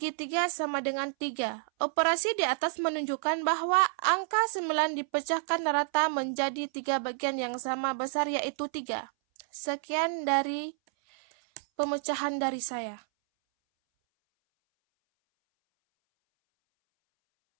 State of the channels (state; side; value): silent; left; 58 dB below the other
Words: 3 sama dengan 3. Operasi di atas menunjukkan bahwa angka 9 dipecahkan rata menjadi 3 bagian yang sama besar, yaitu 3. Sekian dari pemecahan dari saya.